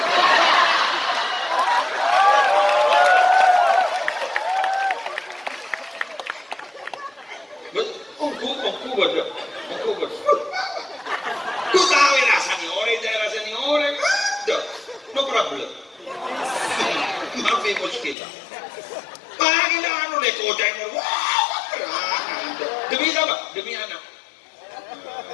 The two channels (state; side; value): drops out; right; at 18.2 s